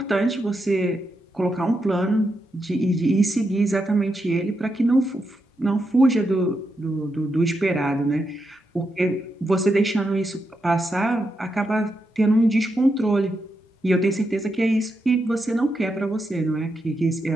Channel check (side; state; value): both; normal; correlation 0.84